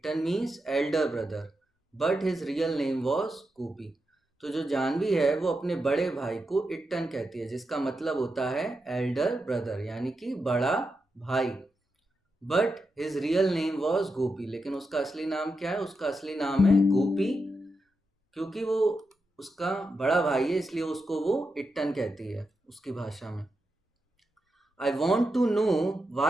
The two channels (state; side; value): normal; both; correlation 0.87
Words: means elder brother, but his real name was Gopi. तो जो जानवी है वो अपने बड़े भाई को इट्टन कहती है, जिसका मतलब होता है एल्डर ब्रदर यानी कि बड़ा भाई। But his real name was Gopi, लेकिन उसका असली नाम क्या है? उसका असली नाम है गोपी। क्योंकि वो उसका बड़ा भाई है इसलिए उसको वो इट्टन कहती है उसकी भाषा में। I want to know